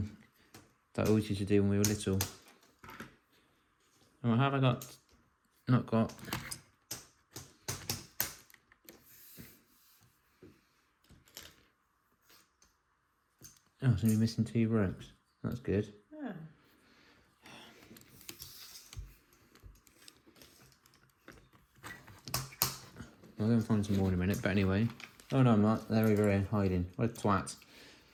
that I always used to do when we were little. And what have I got? Not got. Oh, so we're missing 2 ropes. That's good. Yeah. I'll go and find some more in a minute, but anyway. Oh no, I'm not. They're over here hiding. What a twat.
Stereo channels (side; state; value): both; identical; correlation 1.00